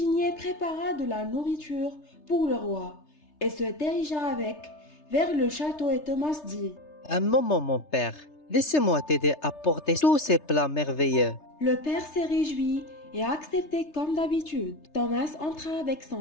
prépara de la nourriture pour le roi et se dirigea avec vers le château et Thomas dit « Un moment, mon père, laissez-moi t'aider à porter tous ces plats merveilleux. » Le père s'est réjoui et a accepté comme d'habitude. Thomas entra avec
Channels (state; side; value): late; right; 3.3 ms